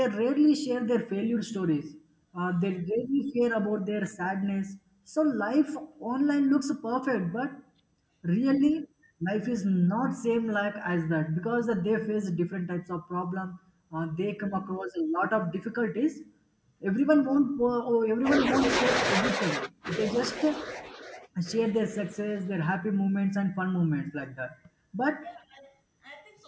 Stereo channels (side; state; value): both; identical; correlation 1.00